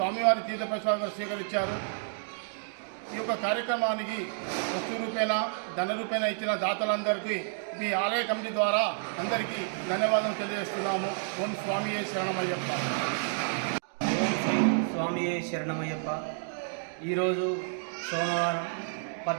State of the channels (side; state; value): left; silent; digital silence